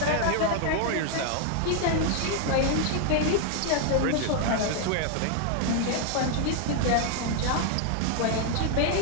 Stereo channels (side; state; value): both; different; correlation 0.00